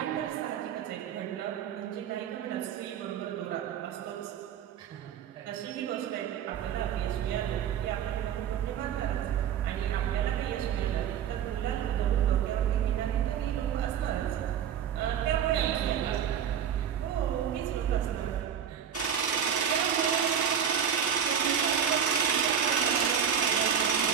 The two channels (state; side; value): quieter; left; 8.4 dB